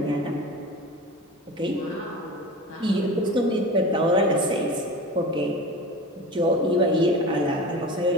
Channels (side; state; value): both; normal; correlation 0.32